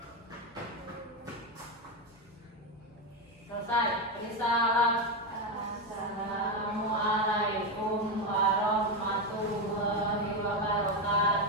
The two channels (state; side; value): normal; both; correlation 0.11